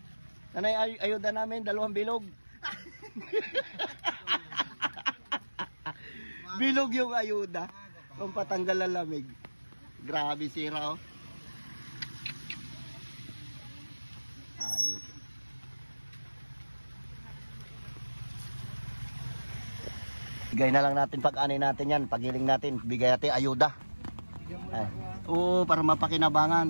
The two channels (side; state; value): both; inverted; correlation -1.00